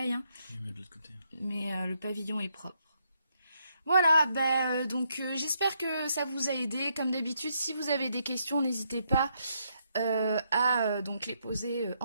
Hein. Oui, mais de l'autre côté. Mais le pavillon est propre. Voilà, donc j'espère que ça vous a aidé. Comme d'habitude, si vous avez des questions, n'hésitez pas à donc les poser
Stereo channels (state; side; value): inverted; both; correlation -0.76